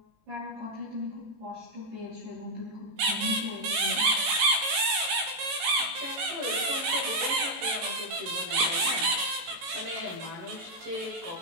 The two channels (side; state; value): left; late; 18 ms